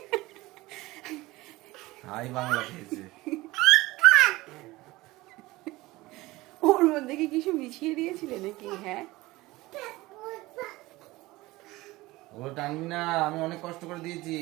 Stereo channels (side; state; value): left; quieter; 19.8 dB